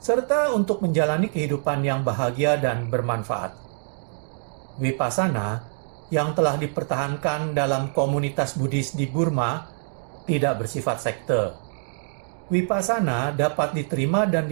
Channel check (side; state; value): left; silent; digital silence